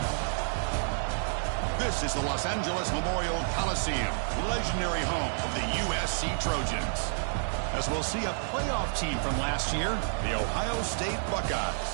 This is the Los Angeles Memorial Coliseum, legendary home of the USC Trojans. As we'll see a playoff team from last year, the Ohio State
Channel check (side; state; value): left; silent; digital silence